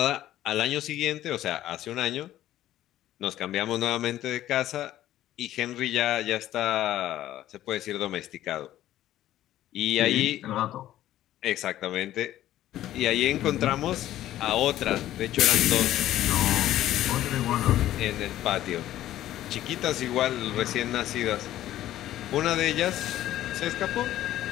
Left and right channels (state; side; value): quieter; right; 13.4 dB